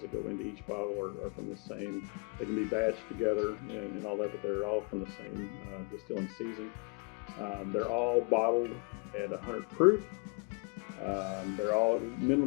that go into each bottle are from the same. They can be batched together and all that, but they're all from the same distilling season. They're all bottled at 100 proof. They're all at a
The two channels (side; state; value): right; quieter; 32.5 dB